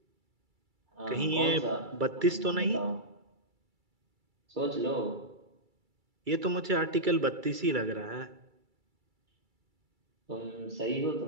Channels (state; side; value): late; left; 2.3 ms